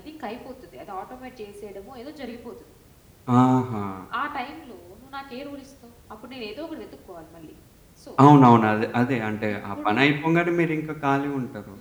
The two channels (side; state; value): both; identical; correlation 1.00